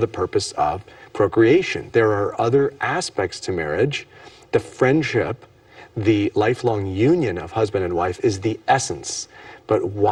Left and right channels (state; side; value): identical; both; correlation 1.00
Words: purpose of procreation. There are other aspects to marriage. The friendship, the lifelong union of husband and wife is the essence. But